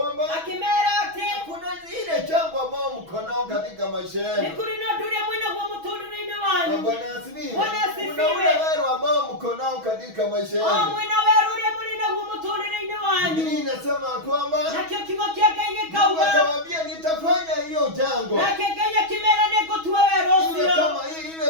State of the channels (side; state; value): left; late; 6.2 ms